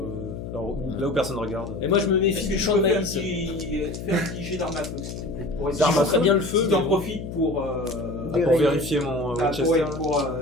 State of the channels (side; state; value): left; noise; hum, 8 dB below the sound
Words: Alors, là où personne regarde. Et moi, je me méfie Est-ce que du tu champ de peux faire maïs. faire un petit jet d'arme à feu, s'il te plaît, pour essayer Je ferai bien le feu. Si mais t'en bon. profites pour, Pour vérifier mon Winchester. pour